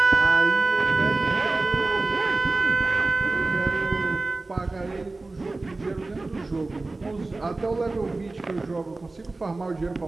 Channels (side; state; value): left; quieter; 3.3 dB